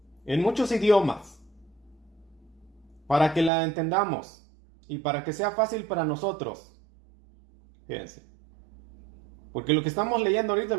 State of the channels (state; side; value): drops out; left; at 3.5 s